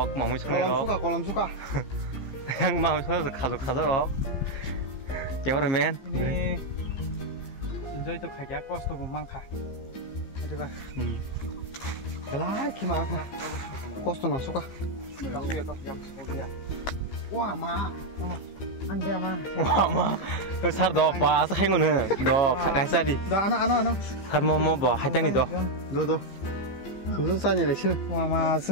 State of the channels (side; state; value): right; late; 15 ms